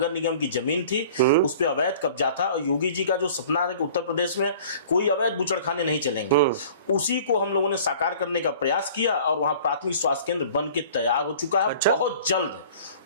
निगम की जमीन थी, उस पर अवैध कब्जा था, और योगी जी का जो सपना है कि उत्तर प्रदेश में कोई अवैध बूचड़खाने नहीं चलेंगे, उसी को हम लोगों ने साकार करने का प्रयास किया, और वहां प्राथमिक स्वास्थ्य केंद्र बन के तैयार हो चुका है। अच्छा? बहुत जल्द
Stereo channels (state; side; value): inverted; both; correlation -0.47